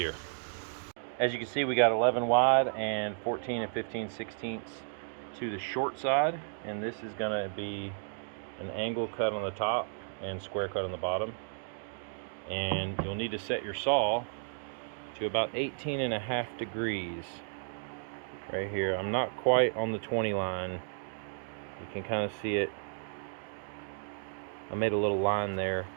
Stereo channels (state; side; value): silent; left; digital silence